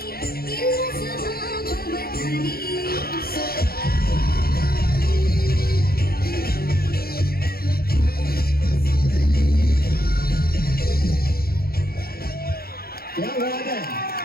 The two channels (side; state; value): right; late; 0.44 ms